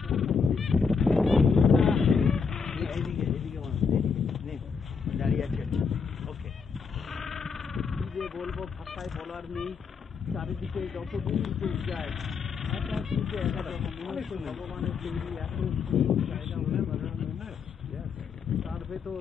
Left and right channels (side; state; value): right; quieter; 5.6 dB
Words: দাঁড়িয়ে আছে ওকে কি যে বলবো ভাষায় বলার নেই চারিদিকে যত দূর যায় ভগবানের তৈরি এত জায়গা তার ভেতর